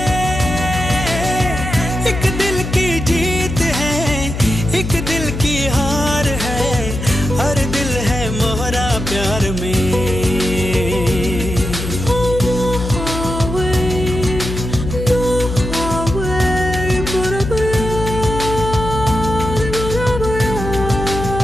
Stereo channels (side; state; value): left; noise; hum, 5 dB below the sound